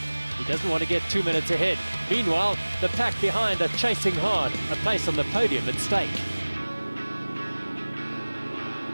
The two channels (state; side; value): inverted; both; correlation -1.00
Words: He doesn't want to get 2 minutes ahead. Meanwhile, the pack behind are chasing hard, a place on the podium at stake.